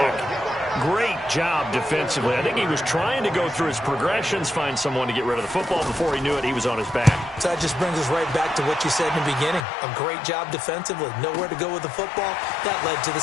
Great job defensively. I think he was trying to go through his progressions, find someone to get rid of the football. Before he knew it, he was on his back. So that just brings us right back to what you said in the beginning. A great job defensively. Nowhere to go with the football. That led to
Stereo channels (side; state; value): right; drops out; at 9.7 s